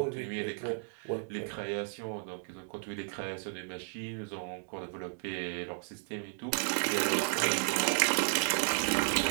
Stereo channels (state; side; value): silent; left; 55 dB below the other